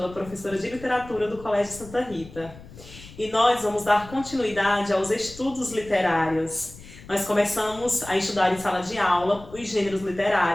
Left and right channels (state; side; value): noise; left; rumble, 18 dB below the sound